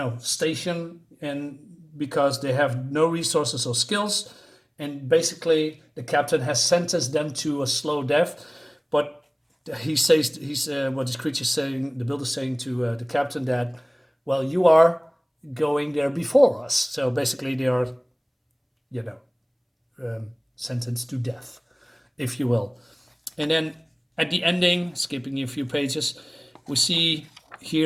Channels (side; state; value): both; identical; correlation 1.00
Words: station, and because they have no resources or skills." And basically, the captain has sentenced them to a slow death. But he's what this creature saying, the builder saying to the captain that, well, you are going there before us. So basically, they are, sentenced to death, if you will. And then at the ending, skipping a few pages, we see